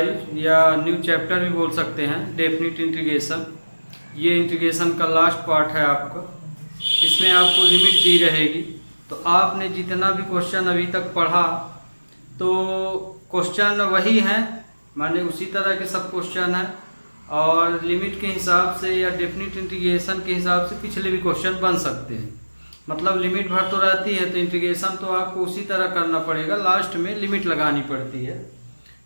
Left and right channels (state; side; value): inverted; both; correlation -1.00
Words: या new chapter भी बोल सकते हैं, डेफिनिट इंटीग्रेशन। ये इंटीग्रेशन का लास्ट पार्ट है आपका। इसमें आपको लिमिट दी रहेगी, तो आपने जितना भी क्वेश्चन अभी तक पढ़ा तो क्वेश्चन वही हैं, माने उसी तरह के सब क्वेश्चन हैं, और लिमिट के हिसाब से या डेफिनिट इंटीग्रेशन के हिसाब से पिछले भी क्वेश्चन बन सकते हैं। मतलब लिमिट भर तो रहती है, तो इंटीग्रेशन तो आपको उसी तरह करना पड़ेगा, लास्ट में लिमिट लगानी पड़ती है।